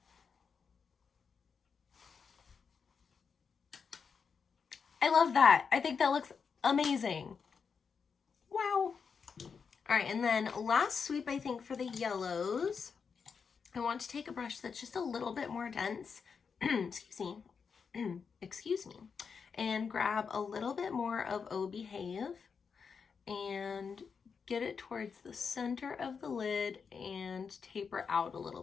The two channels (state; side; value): quieter; right; 5.9 dB